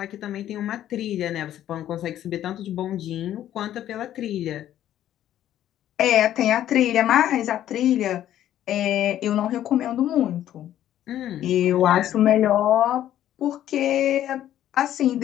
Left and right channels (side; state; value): right; quieter; 11.9 dB